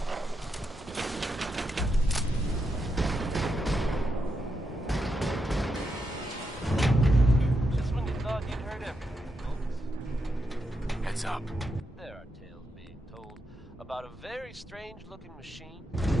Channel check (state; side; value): normal; both; correlation 0.83